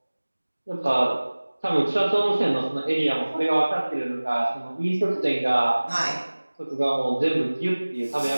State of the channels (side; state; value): both; inverted; correlation -1.00